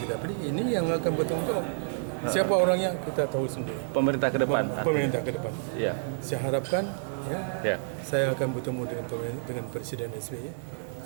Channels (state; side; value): silent; left; digital silence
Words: kita pilih, ini yang akan bertanggung jawab. Siapa orangnya kita tahu sendiri. Pemerintah ke depan. Pemerintah ke depan. Saya harapkan saya akan bertemu dengan Presiden SBY